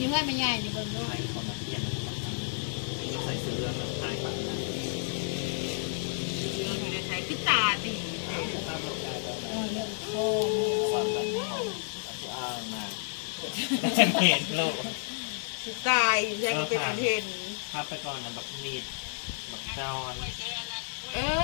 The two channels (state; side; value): silent; right; digital silence